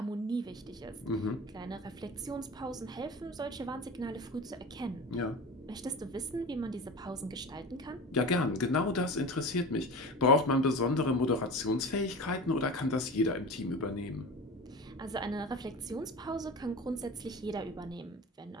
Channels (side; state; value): both; normal; correlation 0.32